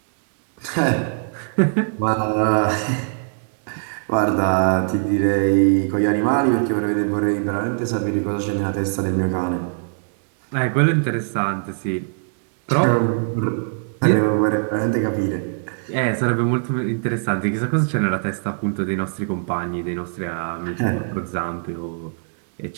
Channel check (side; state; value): left; silent; digital silence